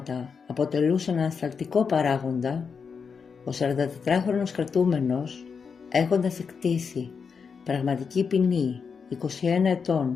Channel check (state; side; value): quieter; right; 5.8 dB